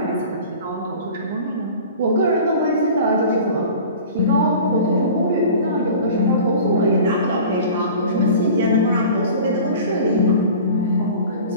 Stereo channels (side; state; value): both; inverted; correlation -0.40